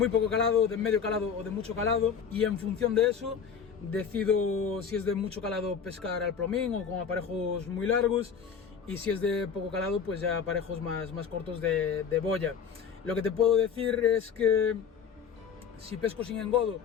poco calado, de medio calado o de mucho calado. Y en función de eso, decido si es de mucho calado pescar al plomín o con aparejos muy largos. Y si es de poco calado, pues ya aparejos más cortos de boya. Lo que te puedo decir es que si pesco sin engodo,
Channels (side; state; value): right; quieter; 6.9 dB